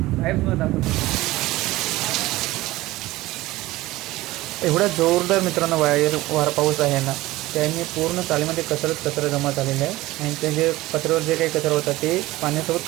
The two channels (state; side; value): quieter; left; 18.2 dB